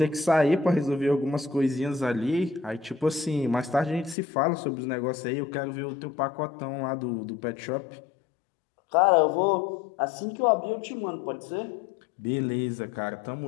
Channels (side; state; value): right; drops out; at 4.2 s